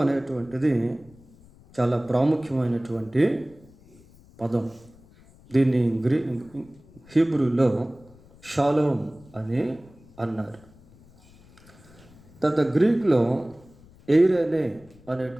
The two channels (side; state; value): left; noise; rumble, 26 dB below the sound